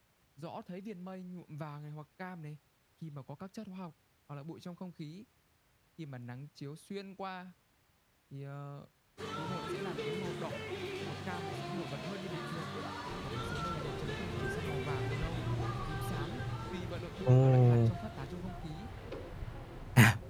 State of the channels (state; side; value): identical; both; correlation 1.00